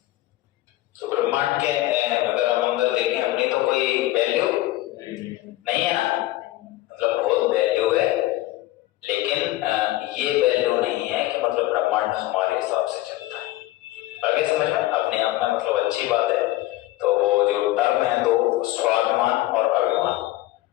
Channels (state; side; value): quieter; right; 16.9 dB